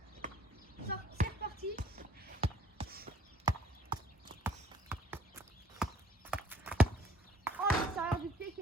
C'est reparti. Oh, l'extérieur du pied qui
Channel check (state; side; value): normal; both; correlation 0.57